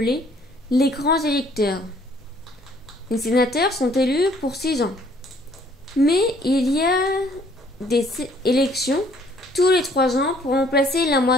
les grands électeurs. Les sénateurs sont élus pour 6 ans. Mais il y a des élections tous les 3 ans pour remplacer la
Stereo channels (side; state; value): both; normal; correlation 0.61